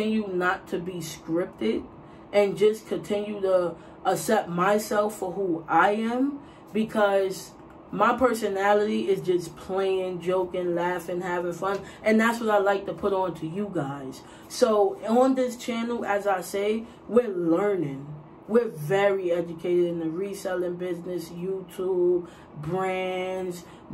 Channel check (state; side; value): identical; both; correlation 1.00